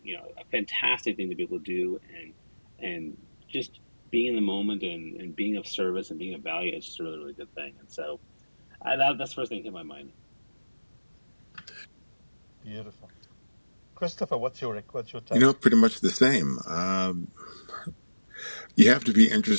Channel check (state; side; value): inverted; both; correlation -1.00